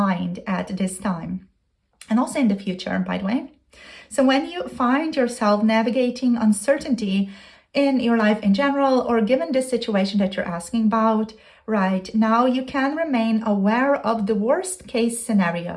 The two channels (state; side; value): identical; both; correlation 1.00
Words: at this time, and also in the future, by the way. So when you find yourself navigating uncertainty in your life in general, or given this situation that you're asking about right now, you can remain aware of the worst case